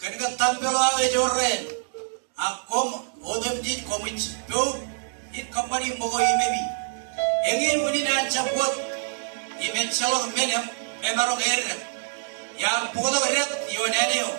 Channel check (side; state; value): left; silent; 61 dB below the other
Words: tampelo ave jorre akom odam jit komich do it kamani mogo imemi engin muni na chapot imen chalo menem emaro erre ya pokok ret yo neneo